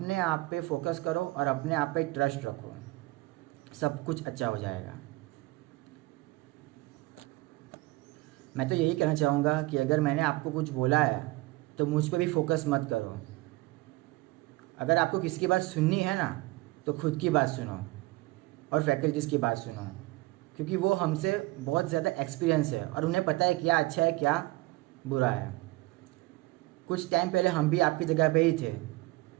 आप पे फोकस करो और अपने आप पे ट्रस्ट रखो, सब कुछ अच्छा हो जाएगा। मैं तो यही कहना चाहूँगा कि अगर मैंने आपको कुछ बोला है तो मुझ पे भी फोकस मत करो। अगर आपको किसी की बात सुननी है ना तो खुद की बात सुनो और फैकल्टीज़ की बात सुनो, क्योंकि वो हमसे बहुत ज़्यादा एक्सपीरियंस है और उन्हें पता है क्या अच्छा है क्या बुरा है। कुछ टाइम पहले हम भी आपकी जगह पे ही थे,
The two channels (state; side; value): quieter; left; 21.2 dB